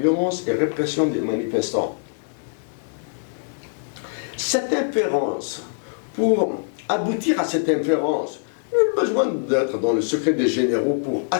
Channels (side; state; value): right; silent; digital silence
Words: et répression des manifestants. Cette inférence, pour aboutir à cette inférence, il y a besoin d'être dans le secret des généraux pour